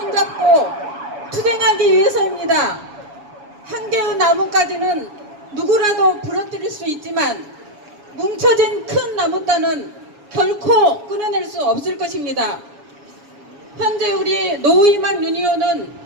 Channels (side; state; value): left; late; 7.2 ms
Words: 투쟁하기 위해서입니다. 한 개의 나뭇가지는 누구라도 부러뜨릴 수 있지만 뭉쳐진 큰 나뭇단은 결코 끊어낼 수 없을 것입니다. 현재 우리 노희망 유니온은